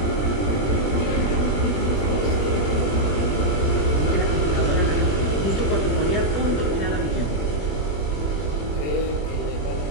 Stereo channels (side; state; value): right; late; 20 ms